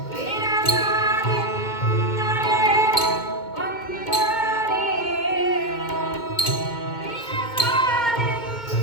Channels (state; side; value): late; right; 2.2 ms